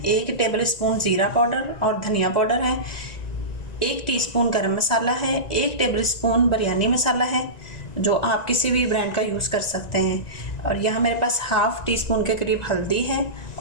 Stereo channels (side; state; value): right; late; 1.9 ms